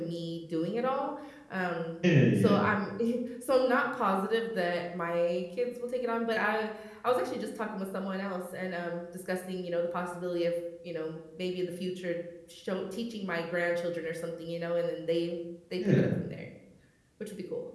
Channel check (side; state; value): both; identical; correlation 1.00